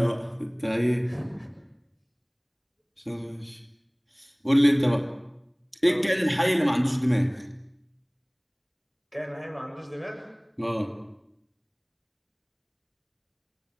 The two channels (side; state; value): both; identical; correlation 1.00